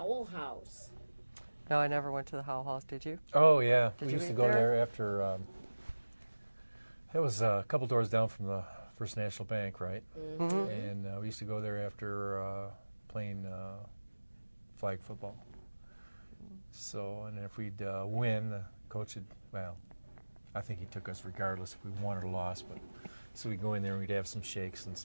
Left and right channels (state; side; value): inverted; both; correlation -1.00